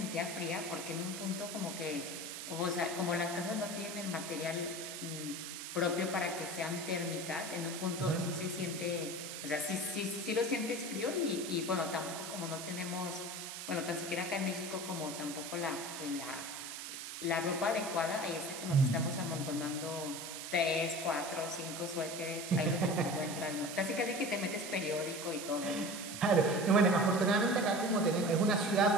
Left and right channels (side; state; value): right; noise; hiss, 8 dB below the sound